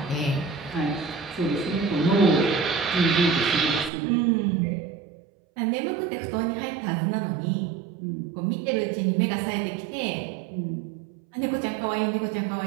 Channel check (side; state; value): left; drops out; at 3.9 s